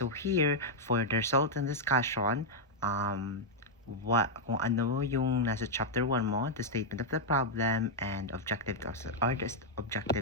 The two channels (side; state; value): both; normal; correlation -0.03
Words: here, for the result and discussion, kung ano yung nasa chapter 1 mo, the statement of the problem and objectives